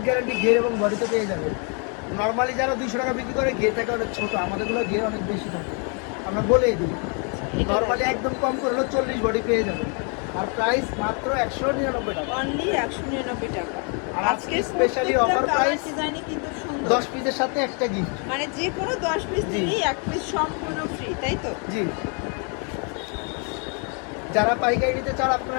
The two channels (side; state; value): right; quieter; 37.8 dB